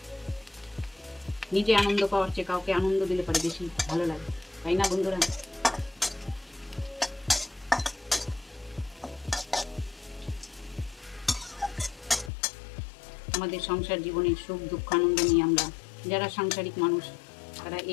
নিজে আনন্দ পাওয়ার চেয়ে কাউকে আনন্দ দিলে পরে বেশি ভালো লাগে, তাই না বন্ধুরা? আমাদের সংসার জীবনে সুখ দুঃখ আনন্দ নিয়ে আমরা যারা সাংসারিক মানুষ তারা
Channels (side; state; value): right; drops out; at 12.3 s